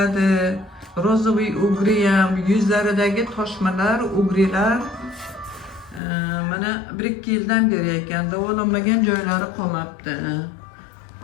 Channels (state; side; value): drops out; right; at 6.0 s